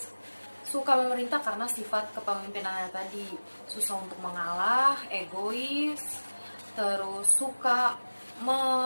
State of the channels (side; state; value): both; inverted; correlation -1.00